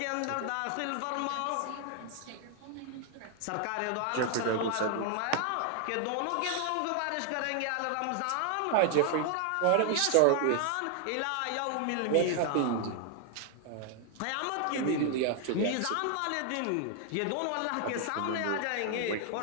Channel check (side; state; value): both; different; correlation 0.00